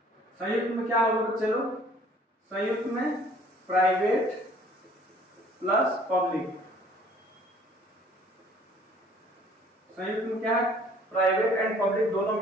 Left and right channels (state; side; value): normal; both; correlation 0.56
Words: संयुक्त में क्या होगा बच्चे लोग? संयुक्त में प्राइवेट प्लस पब्लिक। संयुक्त में क्या है? प्राइवेट एंड पब्लिक दोनों